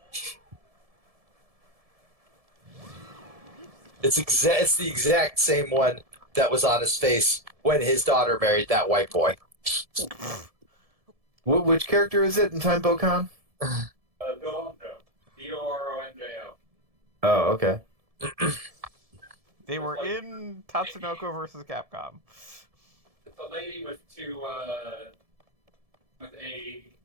It's the exact same one that was on his face when his daughter married that white boy. Which character is it in Time Bokan? Doronjo. Doronjo. Oh, okay. They were in Tatsunoko versus Capcom. It's a lady with with a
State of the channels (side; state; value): left; late; 1.7 ms